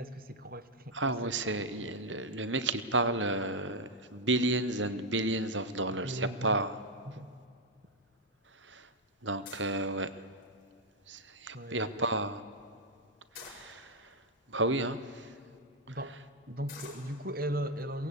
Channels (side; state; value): both; normal; correlation 0.01